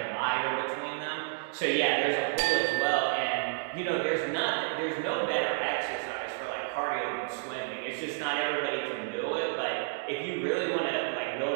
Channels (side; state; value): left; silent; digital silence